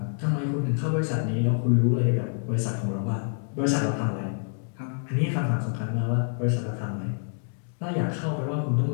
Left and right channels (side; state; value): right; silent; 60 dB below the other